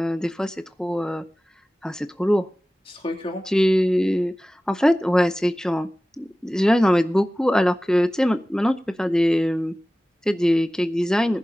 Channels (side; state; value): both; normal; correlation 0.97